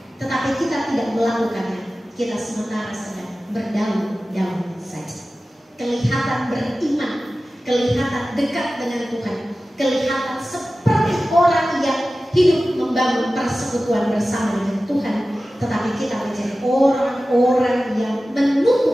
tetapi kita tidak melakukannya. Kita sementara sedang berdaun-daun saja. Kelihatan beriman, kelihatan dekat dengan Tuhan, kelihatan seperti orang yang hidup membangun persekutuan bersama dengan Tuhan, tetapi kita menjadi orang-orang yang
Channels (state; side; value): normal; both; correlation 0.95